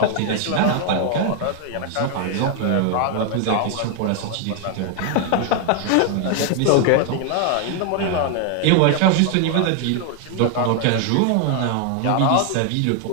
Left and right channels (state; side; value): different; both; correlation 0.00